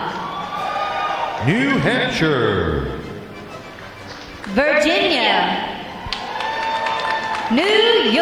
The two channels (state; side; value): identical; both; correlation 1.00